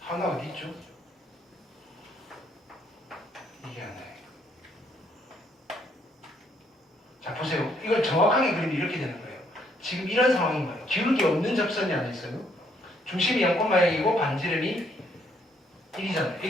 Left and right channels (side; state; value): both; normal; correlation 0.69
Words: 어디 있죠? 이게 안 나와요. 자, 보세요. 이걸 정확하게 그리면 이렇게 되는 거예요. 지금 이런 상황인 거예요. 기울기 없는 접선이 안에 있어요. 중심이 0,0이고 반지름이 1이잖아요.